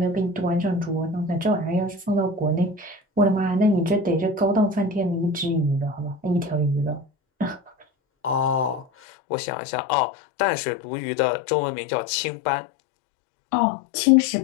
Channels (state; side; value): drops out; right; at 8.8 s